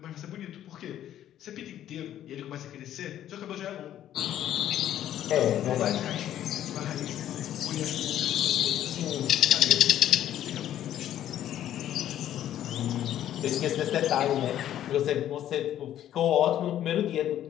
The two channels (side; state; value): right; quieter; 11.6 dB